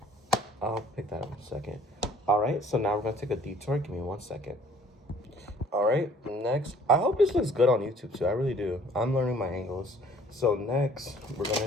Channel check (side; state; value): both; normal; correlation 0.56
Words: I'll pick that up in a second. All right, so now we're going to take a detour. Give me 1 second. All right, next. I hope this looks good on YouTube, too. I really do. I'm learning my angles. So next, we're